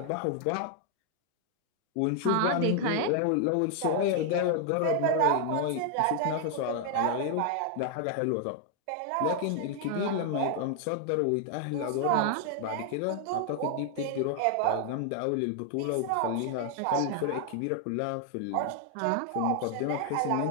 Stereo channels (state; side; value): different; both; correlation 0.00